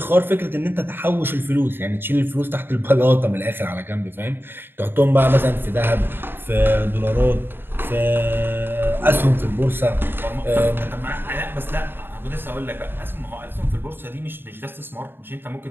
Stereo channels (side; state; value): left; late; 0.10 ms